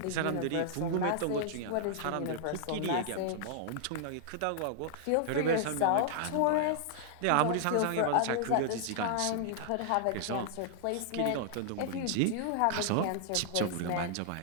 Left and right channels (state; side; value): different; both; correlation -0.01